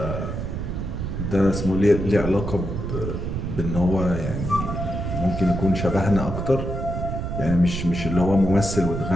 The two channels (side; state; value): right; noise; rumble, 4 dB below the sound